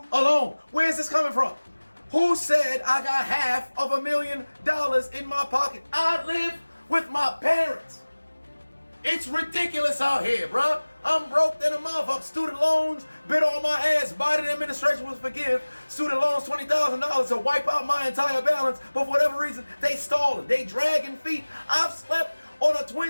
alone. Where's this coming from? Who said I got $500,000 in my pocket? I live with my parents. It's ridiculous out here, bruh. I'm broke than a motherfucker. Student loans bit on my ass. Biden administration will forgive student loans $20,000 to wipe out my entire balance, but for whatever reason, they stalling. They dragging feet. I've slept on a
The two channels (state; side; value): inverted; both; correlation -1.00